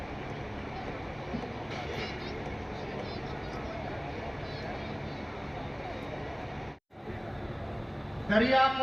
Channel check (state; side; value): identical; both; correlation 1.00